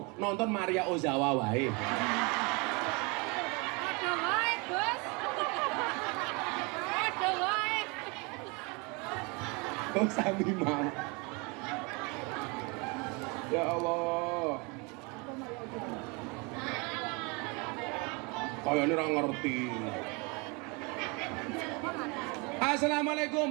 nonton Maria Ozawa wae. Ada wae, Gus. Ada wae. Oh sami mau. Ya Allah. Kayaknya orang ngerti.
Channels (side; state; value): left; quieter; 29.4 dB